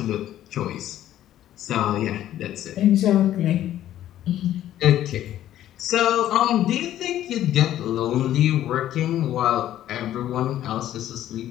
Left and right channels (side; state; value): right; quieter; 12.4 dB